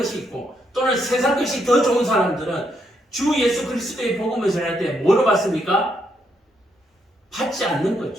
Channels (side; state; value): both; normal; correlation 0.77